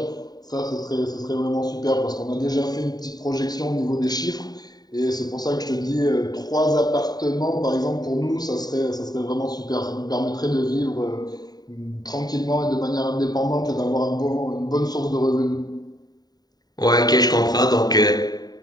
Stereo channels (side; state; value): right; late; 0.19 ms